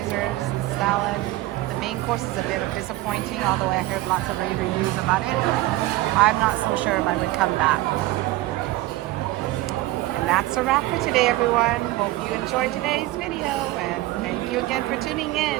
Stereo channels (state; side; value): quieter; left; 17.7 dB